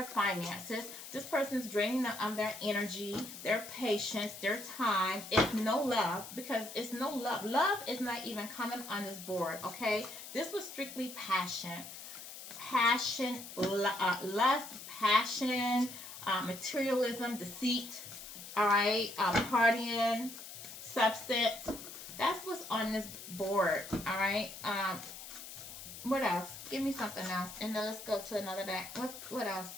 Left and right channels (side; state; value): left; noise; hiss, 12 dB below the sound